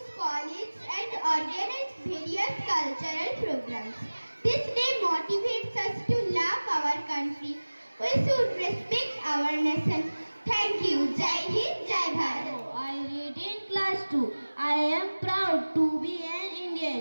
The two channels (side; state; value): both; inverted; correlation -1.00